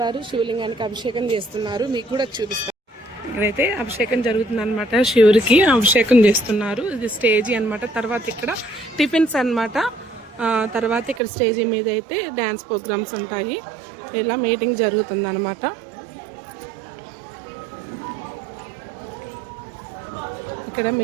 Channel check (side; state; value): left; drops out; at 11.2 s